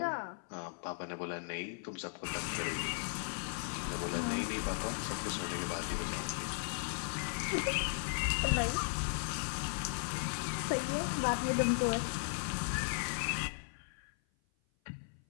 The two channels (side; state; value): right; silent; 53 dB below the other